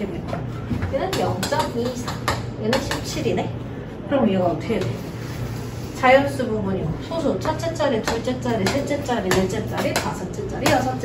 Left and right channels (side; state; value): both; identical; correlation 1.00